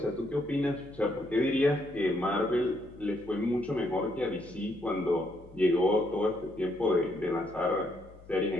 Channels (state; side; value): noise; left; hum, 21 dB below the sound